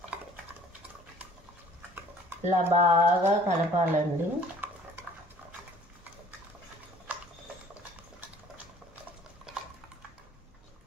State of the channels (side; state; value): both; normal; correlation 0.53